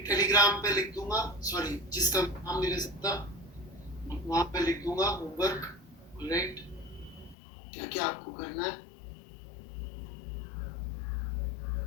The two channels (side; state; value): right; drops out; at 7.4 s